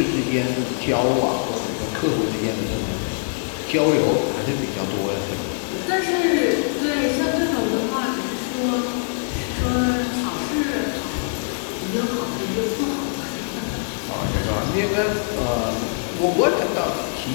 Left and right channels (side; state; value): right; silent; digital silence